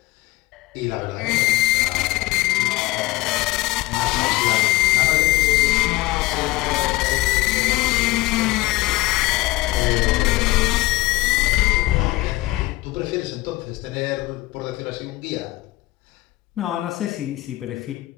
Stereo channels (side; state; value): right; quieter; 19.3 dB